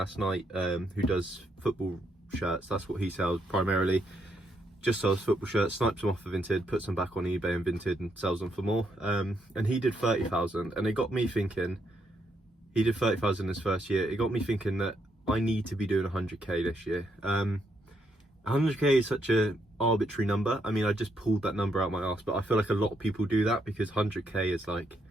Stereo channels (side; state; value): both; normal; correlation 0.76